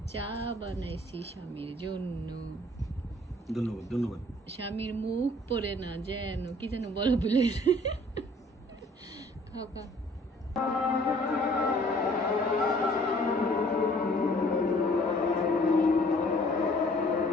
চা বানাইছি স্বামীর জন্য। ধন্যবাদ, ধন্যবাদ। স্বামীর মুখ পড়ে না যেন, কি যেন বলো বলে, খাও খাও।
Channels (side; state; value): both; normal; correlation 0.56